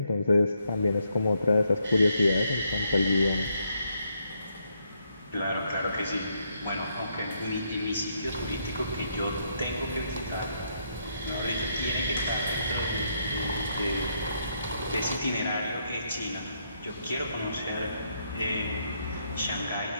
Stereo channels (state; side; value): inverted; both; correlation -0.76